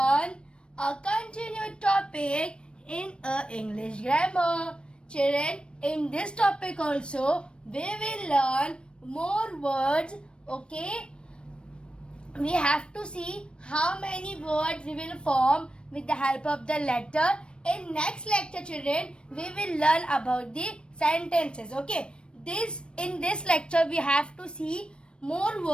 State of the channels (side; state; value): right; late; 0.056 ms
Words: a continued topic in English grammar. Children, in this topic also, we will learn more words, okay? We have to see how many words we will form with the help of the letter. In next lecture, children, we will learn about the sentences, okay? In this lecture, we have to see more